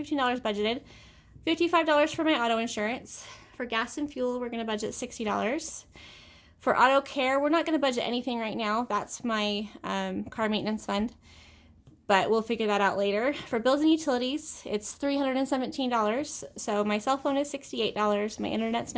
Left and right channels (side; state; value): both; identical; correlation 1.00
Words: budgeted, $55 for my auto insurance. For gas and fuel, we're going to budget $60. For auto care, we're not going to budget anything right now. That's my car maintenance fund, but we'll figure that out later. For bills and utilities, it's $317. So my cell phone is $68, my internet's